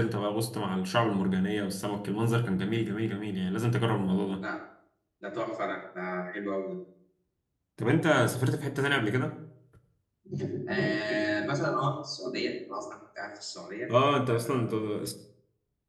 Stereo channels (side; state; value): both; identical; correlation 1.00